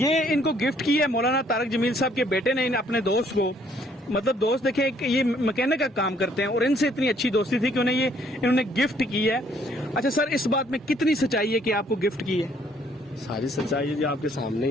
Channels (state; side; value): normal; both; correlation 0.64